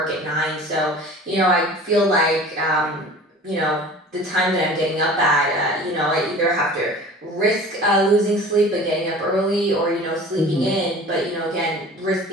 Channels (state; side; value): normal; both; correlation 0.42